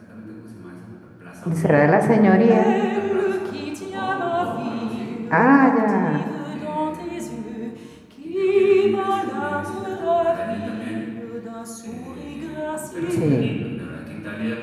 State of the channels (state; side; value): identical; both; correlation 1.00